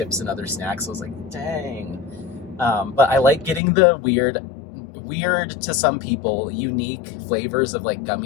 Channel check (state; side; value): drops out; right; at 3.6 s